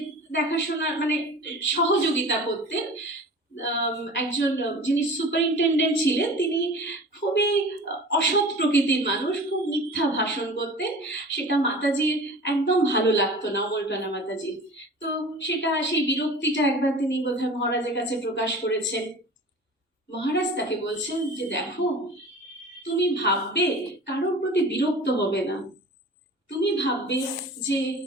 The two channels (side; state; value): both; normal; correlation 0.39